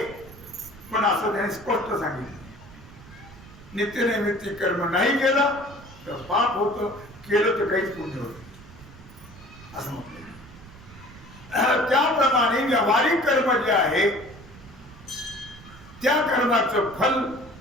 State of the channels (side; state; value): right; noise; rumble, 19 dB below the sound